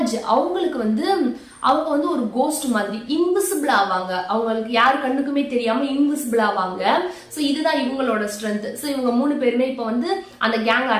அவங்களுக்கு வந்து அவங்க வந்து ஒரு கோஸ்ட் மாதிரி இன்விசிபிள் ஆவாங்க. அவங்களுக்கு யாரு கண்ணுக்குமே தெரியாம இன்விசிபிள் ஆவாங்க. ஸோ இதுதான் இவங்களோட ஸ்ட்ரென்த். ஸோ இவங்க 3 பேருமே இப்போ வந்து அந்த கேங்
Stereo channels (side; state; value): both; identical; correlation 1.00